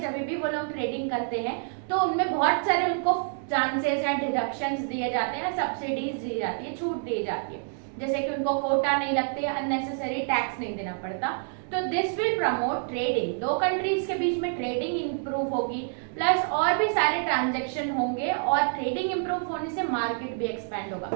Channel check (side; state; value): left; silent; 60 dB below the other